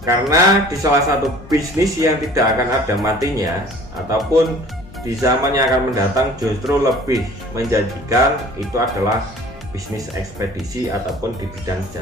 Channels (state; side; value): noise; left; hum, 21 dB below the sound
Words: Karena di salah satu bisnis yang tidak akan ada matinya ataupun di zaman yang akan mendatang justru lebih menjanjikan itu adalah bisnis ekspedisi ataupun di bidang